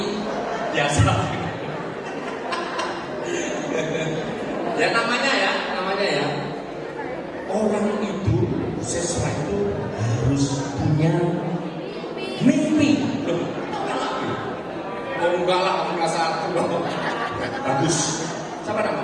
biasa. Ya namanya ya. Orang itu siswa itu harus punya mimpi. Loh, enggak lah, kasar. Bagus. Siapa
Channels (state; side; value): identical; both; correlation 1.00